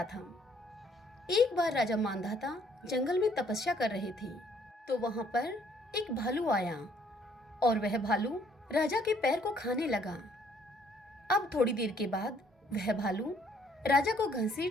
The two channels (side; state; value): both; normal; correlation 0.64